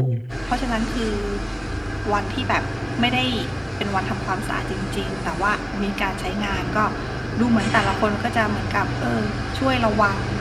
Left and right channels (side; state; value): both; identical; correlation 1.00